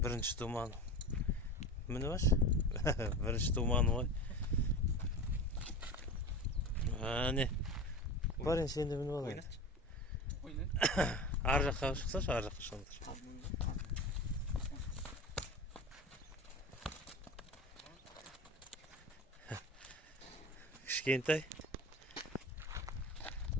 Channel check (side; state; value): both; normal; correlation 0.31